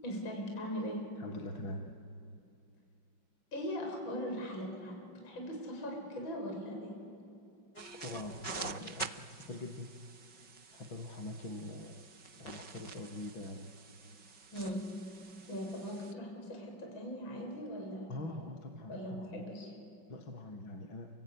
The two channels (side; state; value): right; late; 5.3 ms